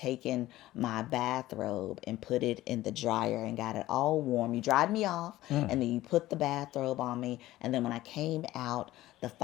my bathrobe and put it in the dryer and got it all warm. You dried me off, and then you put the bathrobe on me. And then when I came out, the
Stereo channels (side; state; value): right; quieter; 16.0 dB